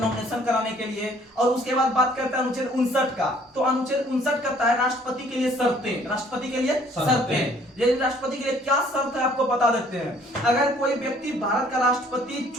कराने के लिए। और उसके बाद बात करते हैं अनुच्छेद 59 का। तो अनुच्छेद 59 कहता है राष्ट्रपति के लिए शर्तें, राष्ट्रपति के लिए शर्तें। यदि राष्ट्रपति के लिए क्या शर्त है आपको बता देते हैं। अगर कोई व्यक्ति भारत का राष्ट्रपति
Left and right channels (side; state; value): both; normal; correlation 0.58